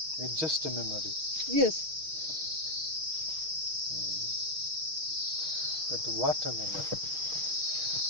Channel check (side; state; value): left; late; 6.4 ms